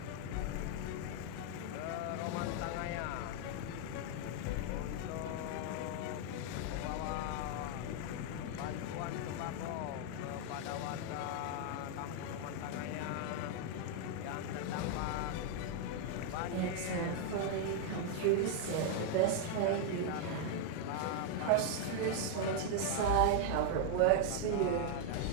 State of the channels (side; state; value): both; different; correlation 0.00